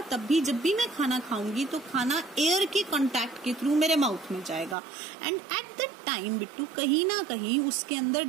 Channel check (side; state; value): left; drops out; at 4.8 s